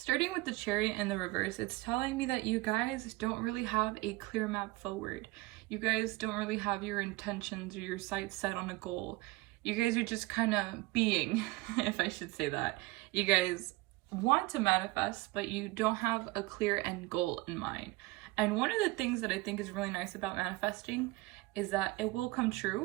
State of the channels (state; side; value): quieter; left; 21.3 dB